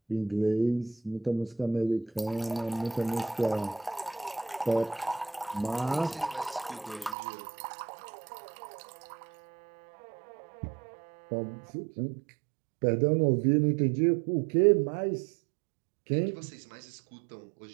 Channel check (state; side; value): drops out; left; at 7.2 s